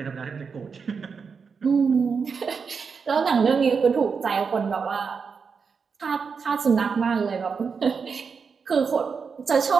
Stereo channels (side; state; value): left; quieter; 5.6 dB